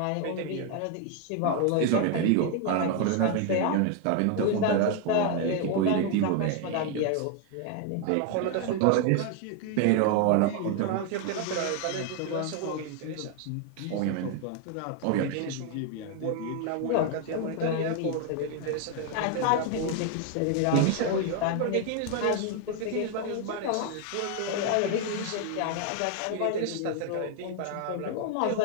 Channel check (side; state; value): both; different; correlation 0.01